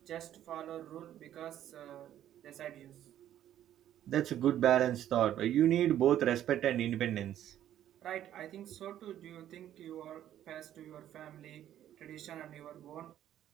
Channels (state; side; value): quieter; left; 11.6 dB